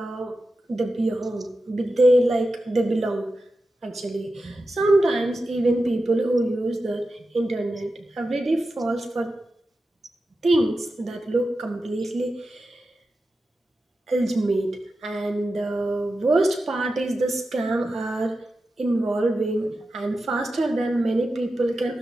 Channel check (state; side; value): normal; both; correlation 0.91